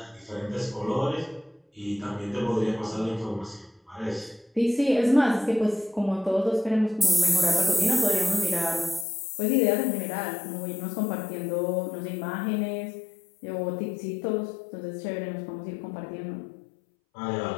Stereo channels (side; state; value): right; drops out; at 9.1 s